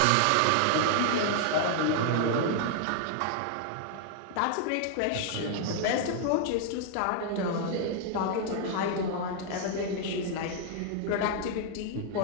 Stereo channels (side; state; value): both; different; correlation 0.00